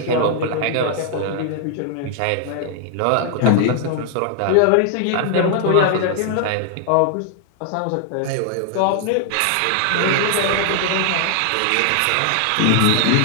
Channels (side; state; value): both; different; correlation 0.00